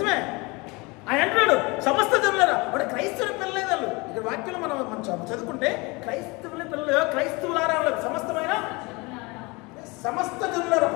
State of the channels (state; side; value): quieter; right; 26.1 dB